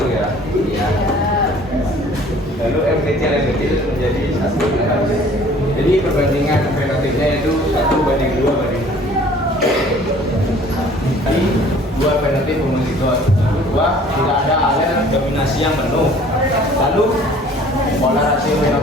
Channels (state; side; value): normal; both; correlation 0.52